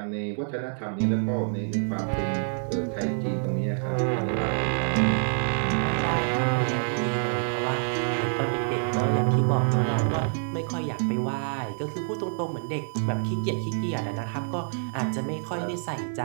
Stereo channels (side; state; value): left; silent; digital silence